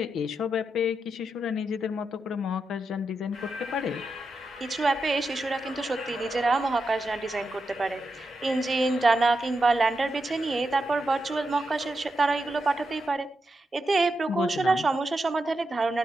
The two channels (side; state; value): both; normal; correlation 0.87